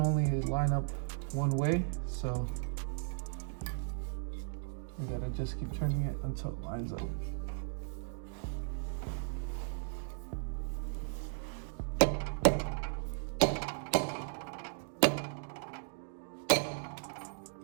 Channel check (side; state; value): left; silent; digital silence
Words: line up one way, so we gotta just keep turning it until it lines up.